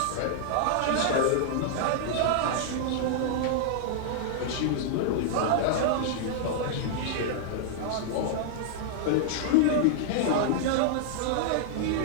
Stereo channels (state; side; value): different; both; correlation -0.01